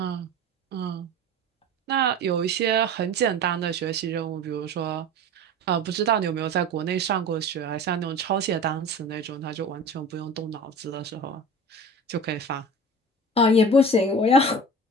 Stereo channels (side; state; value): both; normal; correlation 0.35